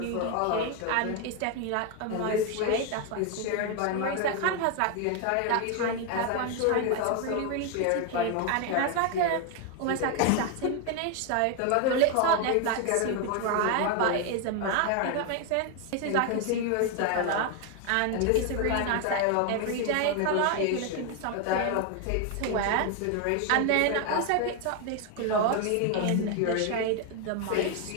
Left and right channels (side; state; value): both; different; correlation 0.01